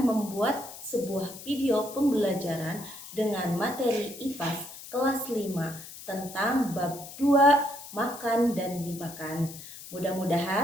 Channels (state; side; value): noise; left; hiss, 14 dB below the sound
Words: sebuah video pembelajaran dengan materi IPAS kelas 5 tentang bab 2 makan dan dimakan.